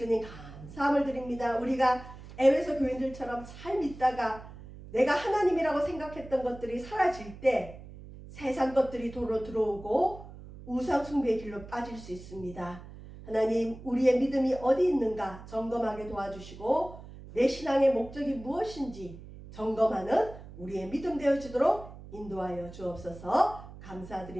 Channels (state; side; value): noise; right; hum, 16 dB below the sound